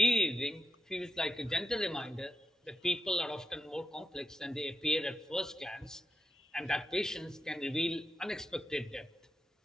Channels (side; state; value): both; normal; correlation 0.86